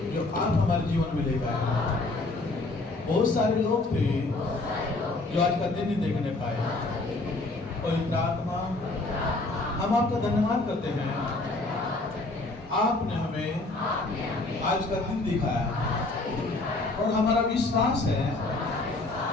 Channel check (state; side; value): quieter; right; 3.1 dB